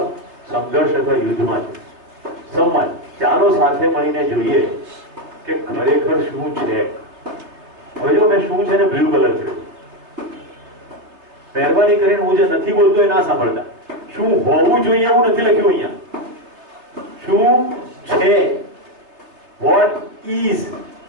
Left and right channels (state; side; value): late; left; 3.3 ms